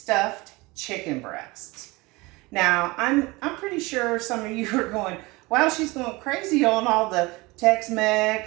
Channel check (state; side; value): quieter; left; 23.2 dB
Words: chicken breasts. Now, I'm pretty sure some of you are going, wow, she's going crazy on all the